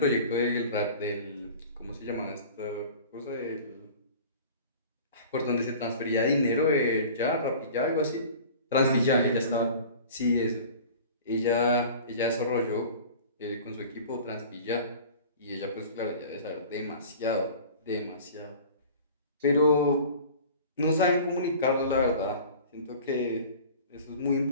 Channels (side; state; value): both; inverted; correlation -0.42